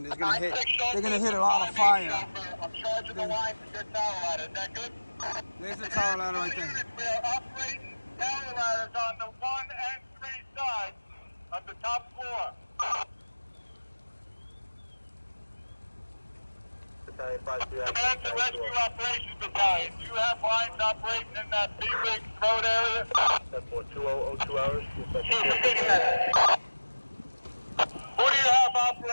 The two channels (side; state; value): both; inverted; correlation -1.00